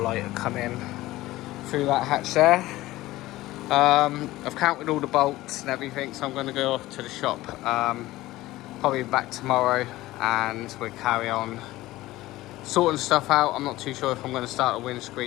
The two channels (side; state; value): right; quieter; 17.3 dB